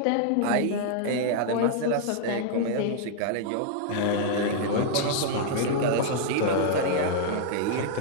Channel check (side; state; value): both; different; correlation -0.01